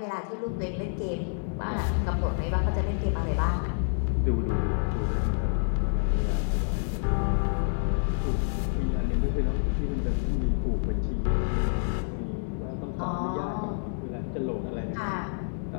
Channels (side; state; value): right; silent; digital silence